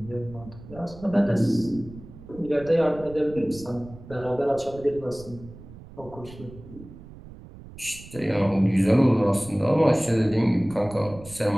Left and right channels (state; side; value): noise; right; rumble, 17 dB below the sound